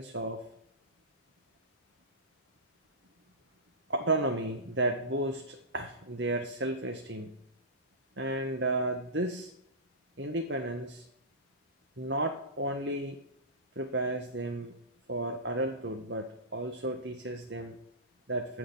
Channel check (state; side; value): normal; both; correlation -0.20